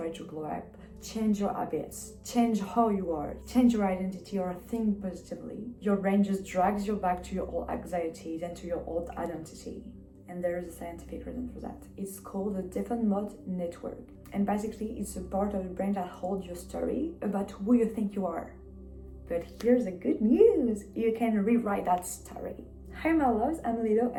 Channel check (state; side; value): identical; both; correlation 1.00